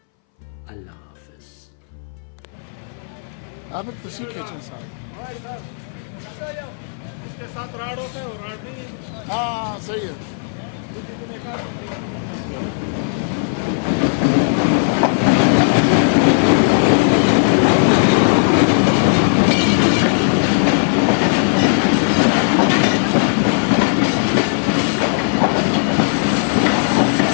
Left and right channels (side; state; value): right; silent; 64 dB below the other